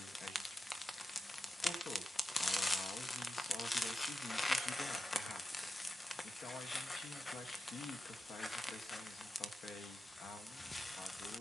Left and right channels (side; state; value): both; normal; correlation 0.91